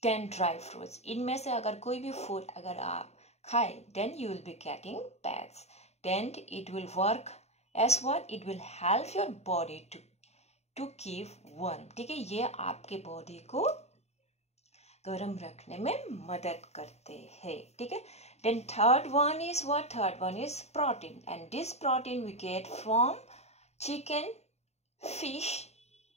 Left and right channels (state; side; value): late; right; 0.31 ms